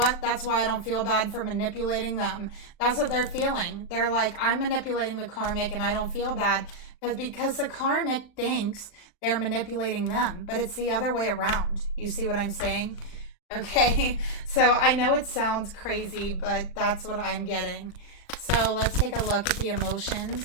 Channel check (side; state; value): right; late; 38 ms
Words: That's why I don't feel bad for manipulating them. That's what they're feeling. They're like, I'm manipulating the karmic and I don't feel bad because the karmic thinks they're manipulating them, but it's the other way around. You see what I'm saying? Okay, so I know it sounds crazy, but that's what I'm getting. So let's take a look at the